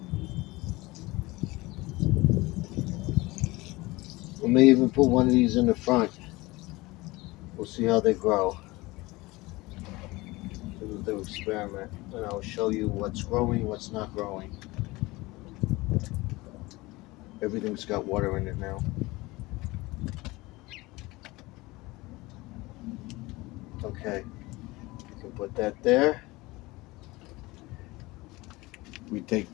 we may even put one of these in the front. We'll see how they grow. We'll do experiment, and I'll show you what's growing, what's not growing. Everything's got water in it now. Okay, you can put that there. We take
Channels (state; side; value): quieter; right; 21.5 dB